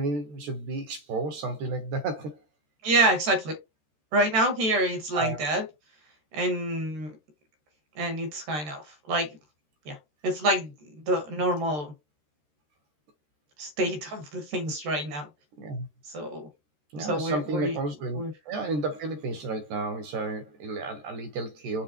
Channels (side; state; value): left; late; 13 ms